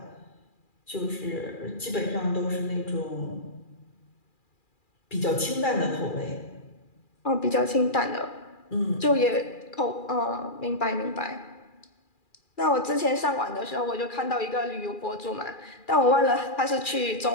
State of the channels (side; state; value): right; late; 2.4 ms